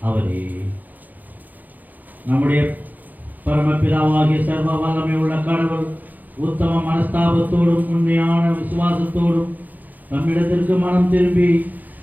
அவரே. நம்முடைய பரமபிதாவாகிய சர்வ வல்லமை உள்ள கடவுள் உத்தம மனஸ்தாபத்தோடும் உண்மையான விசுவாசத்தோடும் நம்மிடத்திற்கு மனம் திரும்பி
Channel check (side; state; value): left; late; 0.083 ms